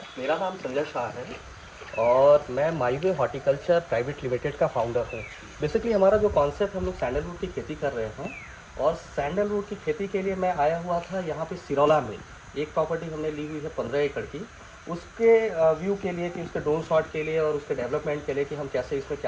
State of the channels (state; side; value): identical; both; correlation 1.00